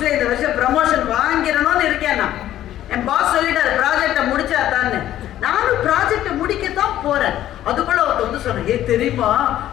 இந்த வருஷம் ப்ரமோஷன் வாங்கிடணும்னு இருக்கேன். நான் என் பாஸ் சொல்லிட்டாரு ப்ராஜெக்டை முடிச்சாத்தான்னு. நானும் ப்ராஜெக்டை முடிக்கத்தான் போறேன். அதுக்குள்ள ஒருத்த வந்து சொன்னேன், தெரியுமா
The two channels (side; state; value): right; quieter; 12.6 dB